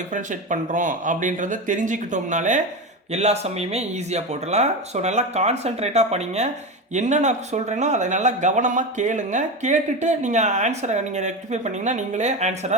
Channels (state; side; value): normal; both; correlation 0.20